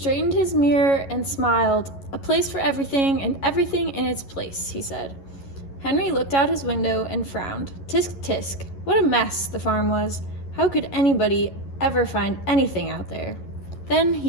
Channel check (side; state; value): right; late; 11 ms